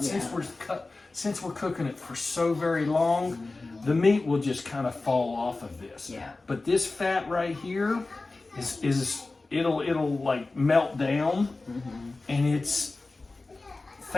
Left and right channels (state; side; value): quieter; right; 3.4 dB